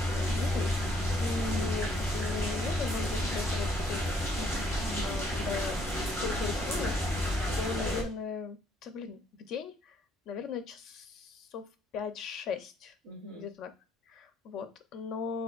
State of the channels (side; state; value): both; normal; correlation 0.67